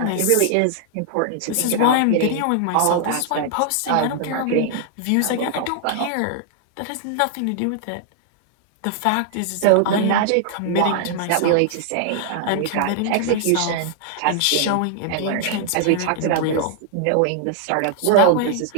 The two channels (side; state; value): both; different; correlation 0.00